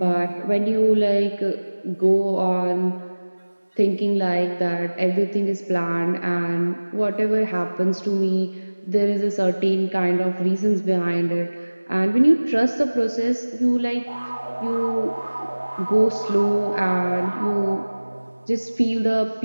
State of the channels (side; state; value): both; inverted; correlation -1.00